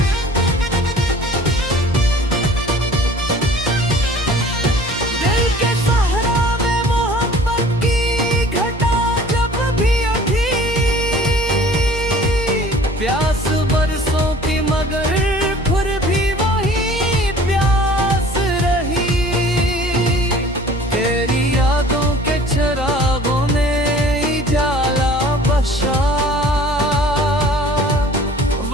दिल के सहरा में मोहब्बत की घटा जब भी उठी, प्यास बरसों की मगर फिर भी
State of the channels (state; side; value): normal; both; correlation 0.49